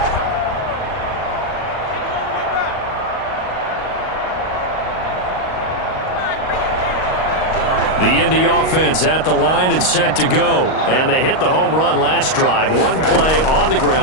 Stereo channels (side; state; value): right; late; 38 ms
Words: The Indy offense at the line and set to go. And they hit the home run last drive. One play on the